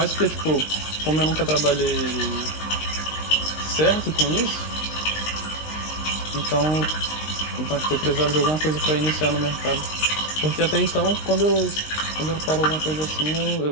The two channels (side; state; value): right; late; 19 ms